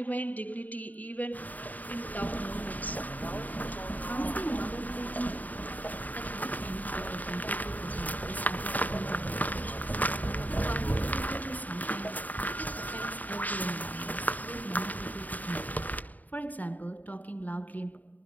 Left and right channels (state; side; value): late; right; 0.079 ms